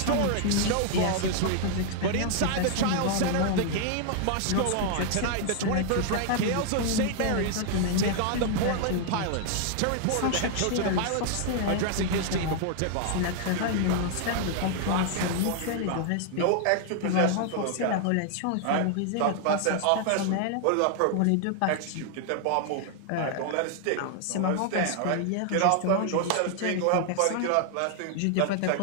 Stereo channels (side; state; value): both; different; correlation 0.00